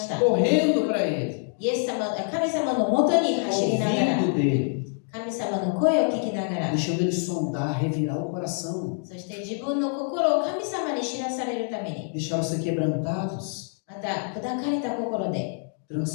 た。 correndo para Ele, イエス様、神様のもとに走りながら、 ouvindo dele, 神様の声を聞きながら、 deixando Ele sondar, revirar o coração, そして自分の心を神様に知らされるために、 deixaram ser quebrantados, また砕かれた心で、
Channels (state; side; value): silent; right; 58 dB below the other